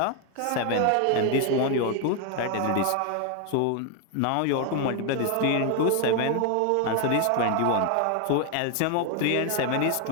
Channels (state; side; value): different; both; correlation 0.01